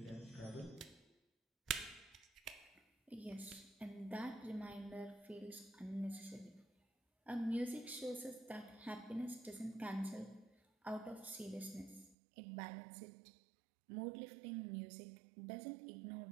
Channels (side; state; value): left; drops out; at 12.2 s